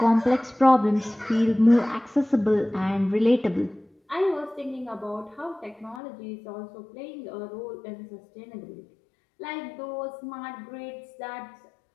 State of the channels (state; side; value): drops out; right; at 6.0 s